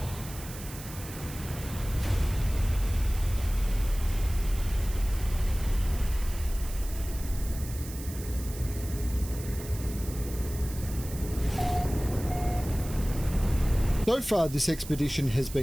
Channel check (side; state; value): right; noise; hiss, 14 dB below the sound